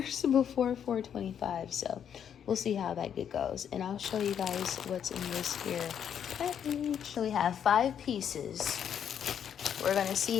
before 4/25. So we'll see how that goes, and I'll show you guys what's in this here package. So we have 5 pieces. We're going to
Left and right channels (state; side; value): quieter; right; 8.6 dB